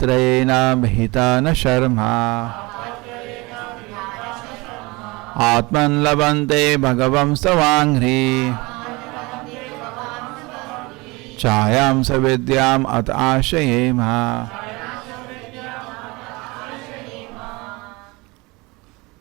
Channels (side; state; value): left; quieter; 24.2 dB